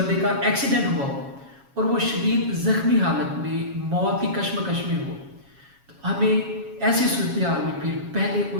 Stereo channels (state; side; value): late; left; 7.2 ms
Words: का एक्सीडेंट हुआ हो और वो शदीद ज़ख्मी हालत में मौत की कश्मकश में हो, तो हमें ऐसी सूरत हाल में फिर पहले